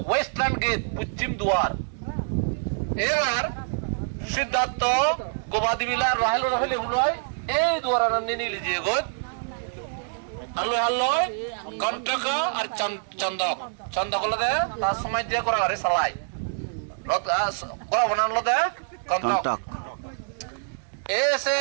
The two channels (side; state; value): left; silent; digital silence